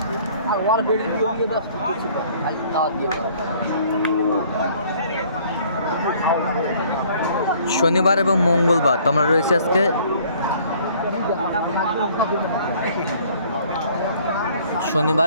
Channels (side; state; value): both; inverted; correlation -0.57